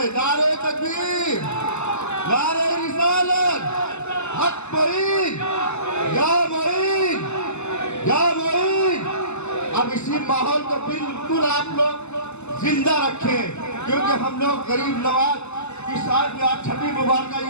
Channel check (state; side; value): late; right; 0.82 ms